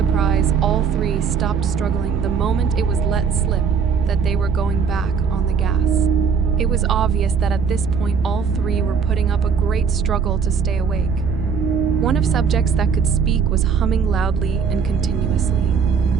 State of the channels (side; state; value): left; quieter; 6.2 dB